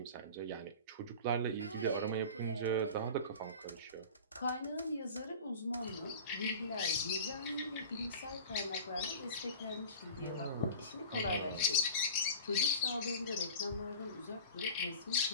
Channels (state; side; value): inverted; both; correlation -0.36